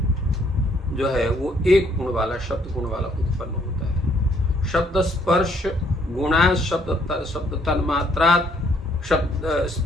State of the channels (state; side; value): normal; both; correlation 0.67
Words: जो है वो एक गुण वाला, शब्द गुण वाला उत्पन्न होता है। शब्द स्पर्श गुणा शब्द तन्मात्रा शब्द